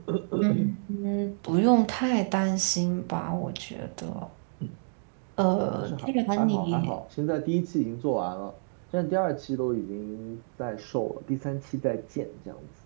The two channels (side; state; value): left; silent; 59 dB below the other